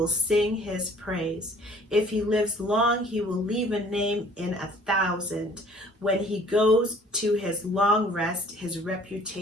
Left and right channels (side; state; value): both; normal; correlation 0.54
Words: sing his praise. If he lives long, he will leave a name in 1,000. When he goes to his long rest, his